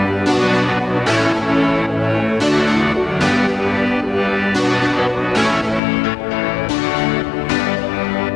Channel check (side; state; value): right; drops out; at 5.8 s